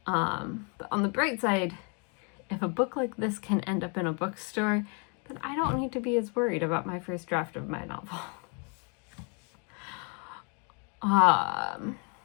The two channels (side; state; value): right; quieter; 36.6 dB